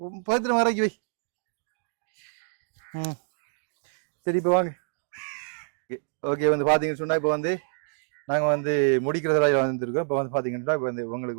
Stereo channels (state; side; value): silent; left; digital silence